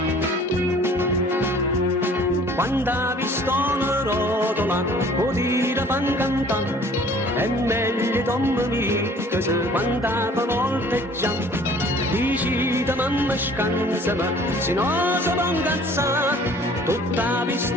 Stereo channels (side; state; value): both; normal; correlation 0.52